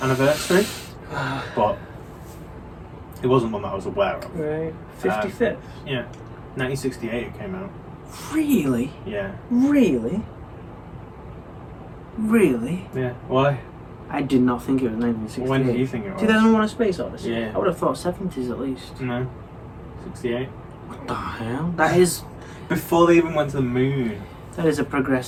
but it wasn't one that I was aware of. Right. 55th. Yeah, 1968 it came out. Really? Yeah. Really? Really? Yeah. Why? I did not think it was 1968. When do you think it was? 2001: A Space Odyssey. Yeah. I would have thought 70s at least. No. 68. What the hell? That is Before they even went to the moon. a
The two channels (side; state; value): both; identical; correlation 1.00